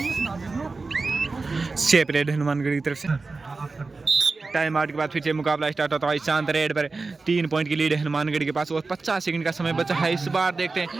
शेप रेड हनुमानगढ़ की तरफ से। टाइम आउट के बाद फिर से मुकाबला स्टार्ट होता है। ईशांत रेड पर 3 पॉइंट की लीड है हनुमानगढ़ के पास और 50 सेकंड का समय बचा है। इस बार देखते हैं।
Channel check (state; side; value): quieter; left; 3.9 dB